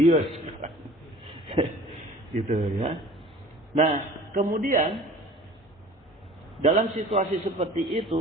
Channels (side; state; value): both; normal; correlation 0.46